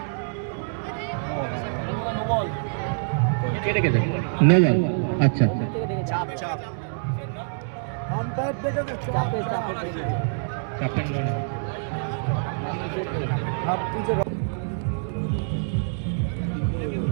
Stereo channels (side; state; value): left; silent; 61 dB below the other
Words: নিয়ে যান। আচ্ছা ক্যাপ্টেন